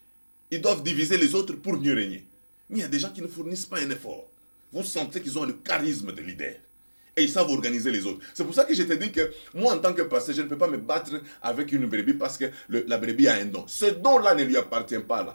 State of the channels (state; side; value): inverted; both; correlation -1.00